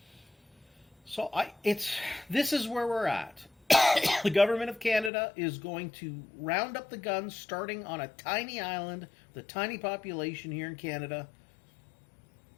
So this is where we're at. The government of Canada is going to round up the guns starting on a tiny island with a tiny population here in Canada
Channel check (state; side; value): drops out; right; at 5.1 s